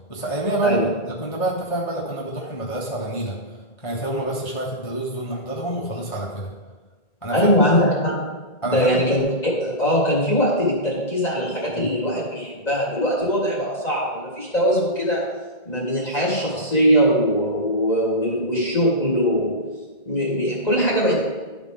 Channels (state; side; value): late; right; 1.9 ms